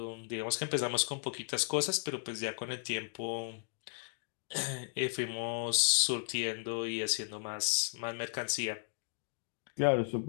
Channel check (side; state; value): right; silent; digital silence